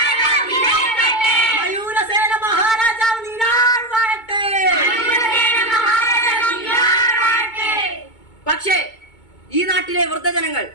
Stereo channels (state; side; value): late; right; 2.2 ms